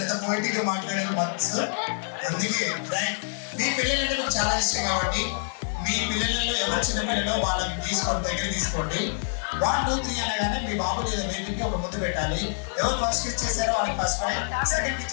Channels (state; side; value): silent; right; digital silence